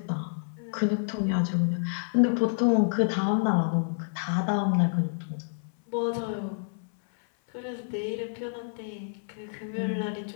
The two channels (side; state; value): right; silent; 58 dB below the other